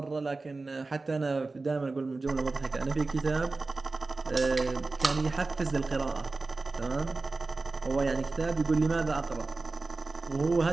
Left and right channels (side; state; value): left; quieter; 3.6 dB